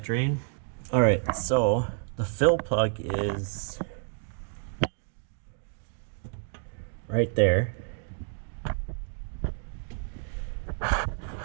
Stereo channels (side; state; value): left; silent; 58 dB below the other